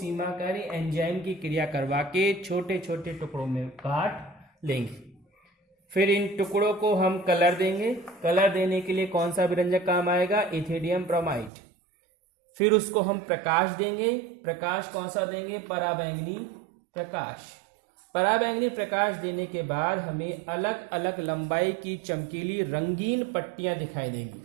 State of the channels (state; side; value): drops out; left; at 11.5 s